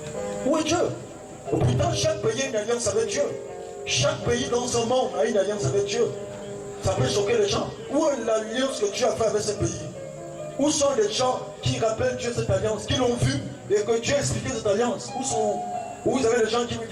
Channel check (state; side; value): identical; both; correlation 1.00